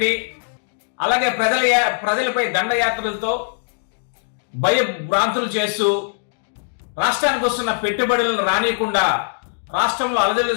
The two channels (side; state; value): right; silent; digital silence